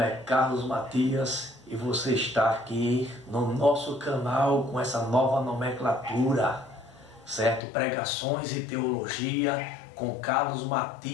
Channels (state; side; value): drops out; right; at 7.7 s